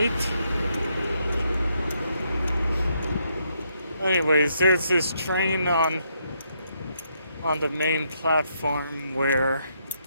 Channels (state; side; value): inverted; both; correlation -0.76